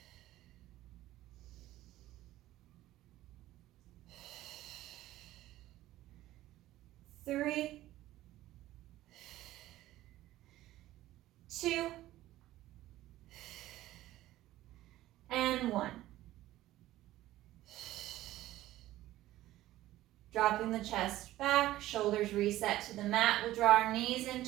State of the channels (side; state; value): left; quieter; 15.3 dB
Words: 3, 2, and 1. Dropping the chest back, shoulders reset to the mat. We'll draw our knees in